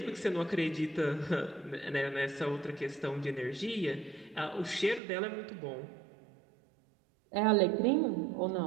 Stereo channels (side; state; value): left; drops out; at 5.0 s